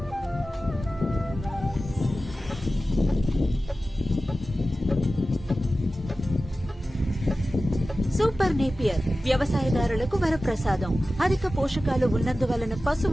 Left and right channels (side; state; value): both; normal; correlation 0.95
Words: Super Napier వ్యవసాయదారులకు వరప్రసాదం. అధిక పోషకాలు ఉన్నందువలన